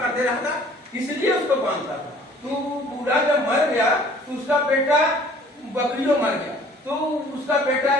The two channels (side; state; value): both; normal; correlation 0.53